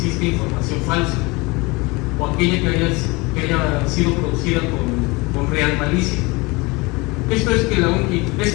información falsa o aquella que haya sido producida con real malicia. Esto es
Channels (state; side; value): quieter; right; 25.1 dB